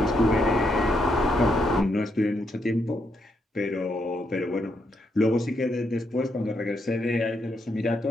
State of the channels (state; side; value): normal; both; correlation 0.78